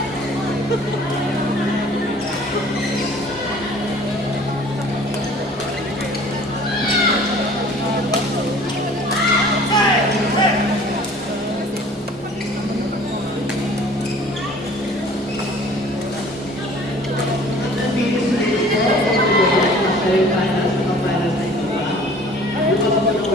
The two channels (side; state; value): both; normal; correlation 0.50